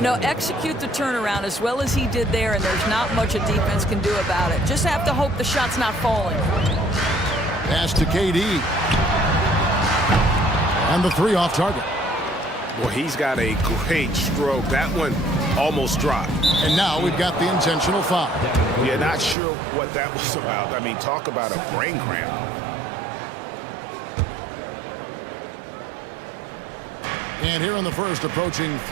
know, execute the turnaround as well as he did there, and there's not much a defense can do about it. Just have to hope the shot's not falling. Pass to KD. And the 3 off target. Well, he's got a great stroke. That one almost dropped. And now we've got the intentional foul. Yeah, not sure what that was about. I mean, talk about a brain cramp. And here in the first, approaching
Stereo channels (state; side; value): drops out; left; at 19.4 s